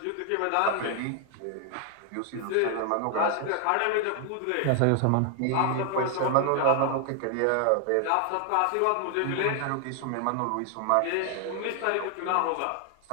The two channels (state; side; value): different; both; correlation 0.00